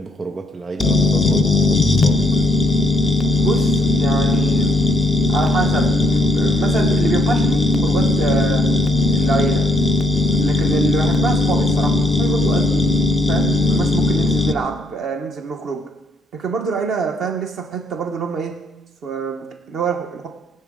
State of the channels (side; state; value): both; normal; correlation 0.71